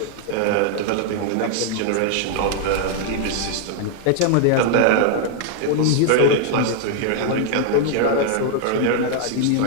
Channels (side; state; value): both; different; correlation 0.00